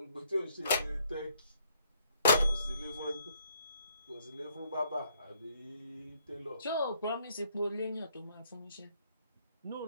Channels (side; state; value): both; inverted; correlation -0.68